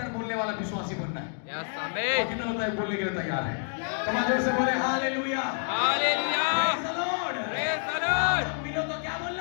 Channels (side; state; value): right; silent; 59 dB below the other